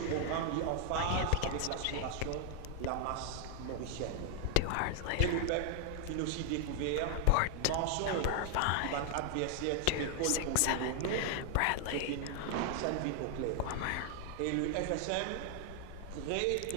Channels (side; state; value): both; different; correlation 0.00